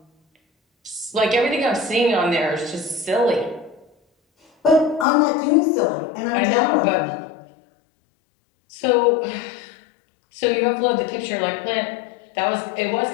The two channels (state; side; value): drops out; right; at 5.1 s